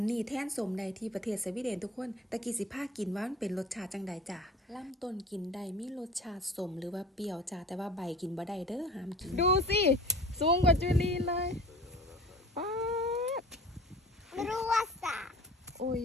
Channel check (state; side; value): normal; both; correlation 0.43